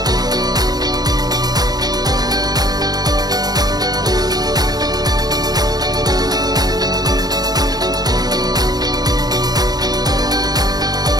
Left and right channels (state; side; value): late; left; 0.19 ms